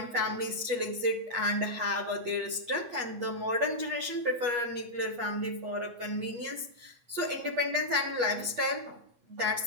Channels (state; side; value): late; left; 8.4 ms